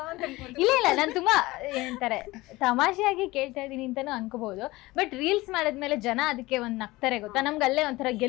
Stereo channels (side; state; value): right; quieter; 20.1 dB